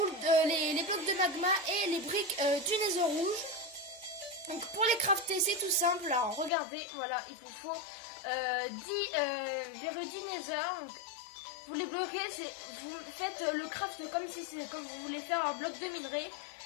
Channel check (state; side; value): drops out; right; at 6.5 s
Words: les blocs de magma et les briques du nether rouge. Donc pour les crafter c'est tout simple. Alors regardez, voilà, il vous faut 10 verres du nether. Donc, vous les bloquez, vous faites le craft comme si c'est comme vous voulez faire un bloc de minerai.